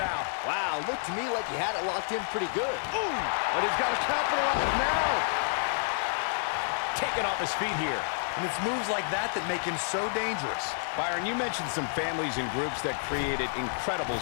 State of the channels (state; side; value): silent; right; digital silence